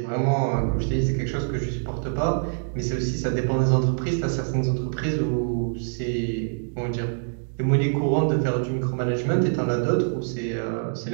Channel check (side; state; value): left; silent; digital silence